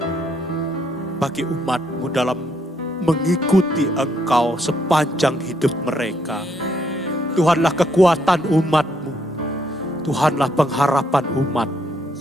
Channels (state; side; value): normal; both; correlation 0.73